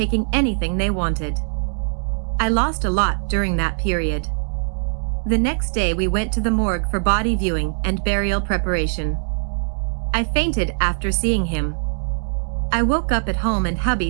anything they wanted. I lost a lot during that period. The next day we went to the morgue for body viewing and burial preparation. I fainted after seeing him. I woke up at home and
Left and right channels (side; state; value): left; silent; digital silence